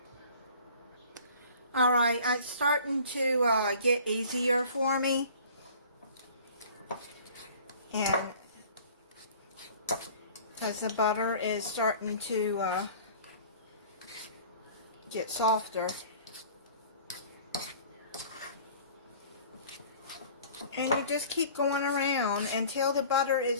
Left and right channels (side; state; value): both; inverted; correlation -0.47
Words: Alright, it's starting to get easier for me. And because the butter is starting to get softer. And you just keep going around until the butter is